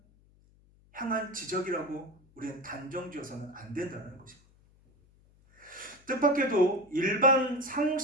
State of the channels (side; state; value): left; noise; hum, 30 dB below the sound